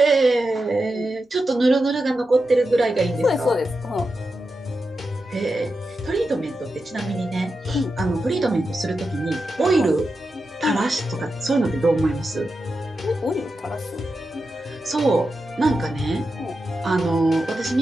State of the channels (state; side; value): normal; both; correlation 0.89